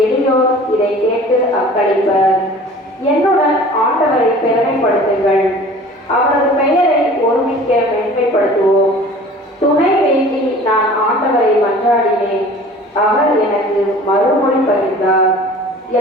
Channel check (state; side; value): normal; both; correlation 0.45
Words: எளியோர் இதை கேட்டு அக்களிப்பர். என்னுடன் ஆண்டவரை பெருமைப்படுத்துங்கள், அவரது பெயரை ஒருமிக்க மேன்மைப்படுத்துவோம். துணை வேண்டி நான் ஆண்டவரை மன்றாடினேன், அவர் எனக்கு மறுமொழி பகிர்ந்தார்.